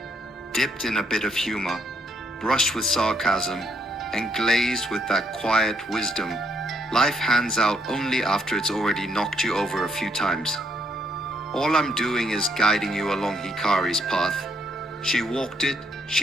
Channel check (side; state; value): both; normal; correlation 0.72